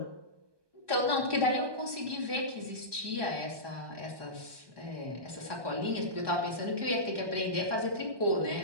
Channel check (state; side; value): late; left; 1.2 ms